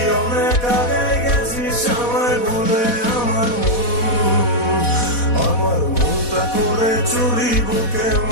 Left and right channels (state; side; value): late; right; 4.1 ms